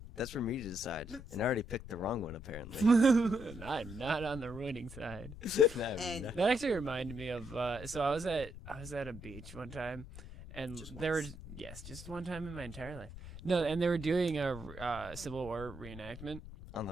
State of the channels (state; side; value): noise; left; rumble, 13 dB below the sound